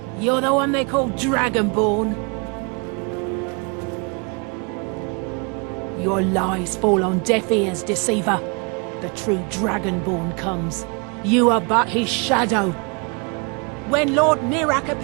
You're the one they call Dragonborn. Your lies fall on deaf ears, deceiver. The true Dragonborn comes. You are but his shadow. When Lord Mirak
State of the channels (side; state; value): left; quieter; 33.0 dB